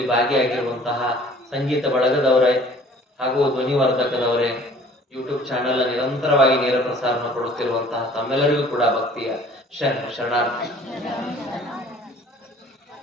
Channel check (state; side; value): normal; both; correlation 0.52